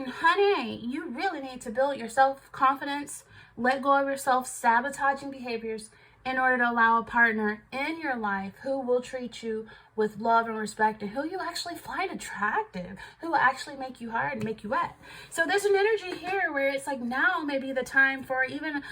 honey, you really need to build your self-confidence, let go of your self-sabotaging behaviors in order to allow a partner in your life who will treat you with love and respect, and who you actually find attractive, who will actually make you hard and make you wet. So there's an energy here where it's like, now may be the time for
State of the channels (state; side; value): identical; both; correlation 1.00